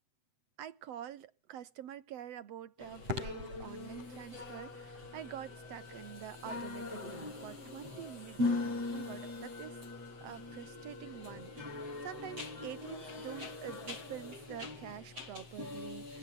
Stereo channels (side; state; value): left; late; 7.6 ms